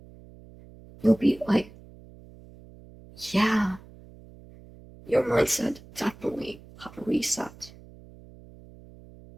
You'll be yeah, your mindset definitely have a reset.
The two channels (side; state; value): right; noise; hum, 21 dB below the sound